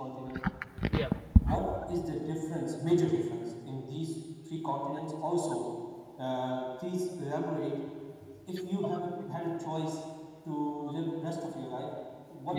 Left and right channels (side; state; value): both; identical; correlation 1.00